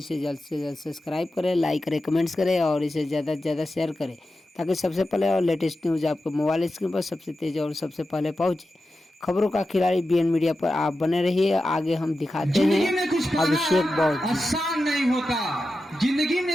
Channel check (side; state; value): both; normal; correlation 0.91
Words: जल्द से जल्द सब्सक्राइब करें, लाइक करें, कमेंट्स करें और इसे ज़्यादा से ज़्यादा शेयर करें ताकि सबसे पहले और लेटेस्ट न्यूज़ आपको मोबाइल स्क्रीन पर सबसे तेज और सबसे पहले पहुंचे। खबरों का खिलाड़ी BN मीडिया पर आप बने रहिए। आगे हम दिखाते हैं अभिषेक बौद्ध। आसान नहीं होता, जिंदगी